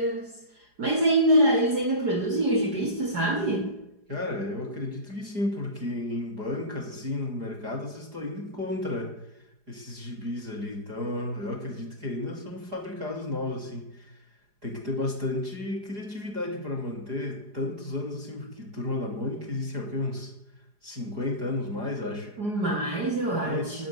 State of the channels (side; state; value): left; late; 4.8 ms